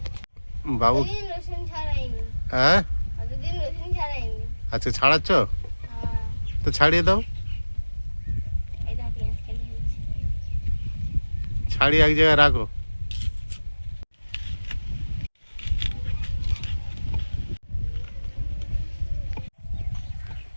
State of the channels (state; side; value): inverted; both; correlation -1.00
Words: বাবু রসুন ছাড়াইনি, হ্যাঁ কতদিন রসুন ছাড়াইনি। আচ্ছা ছাড়াচ্ছ হ্যাঁ, তো ছাড়িয়ে দাও, এই দেখ পেঁয়াজ কেটে দিয়েছি। ছাড়িয়ে এক জায়গায় রাখো।